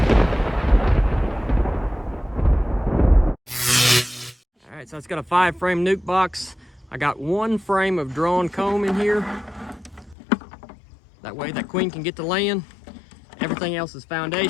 right, so it's got a 5-frame nuke box. I got 1 frame of drawn comb in here. That way that queen can get to laying. Everything else is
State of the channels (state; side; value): drops out; right; at 10.2 s